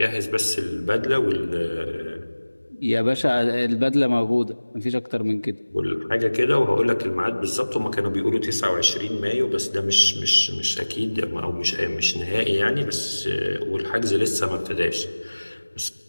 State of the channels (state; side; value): inverted; both; correlation -1.00